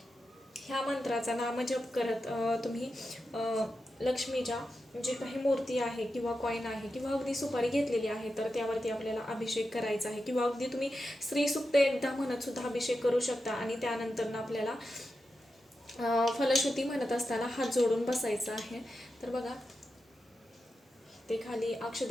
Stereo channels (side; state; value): both; normal; correlation 0.89